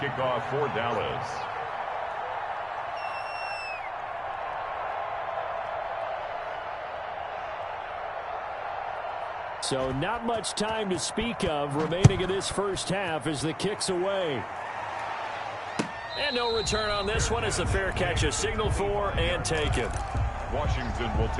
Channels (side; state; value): both; identical; correlation 1.00